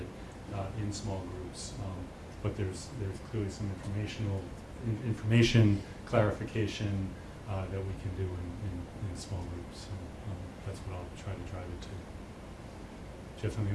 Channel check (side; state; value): both; identical; correlation 1.00